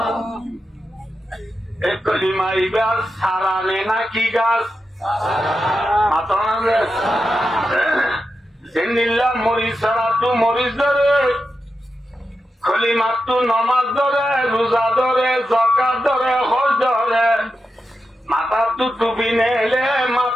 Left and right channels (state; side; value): normal; both; correlation 0.89